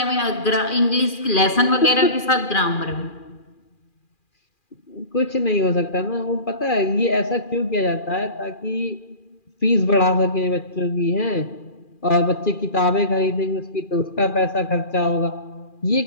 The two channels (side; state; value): right; late; 2.4 ms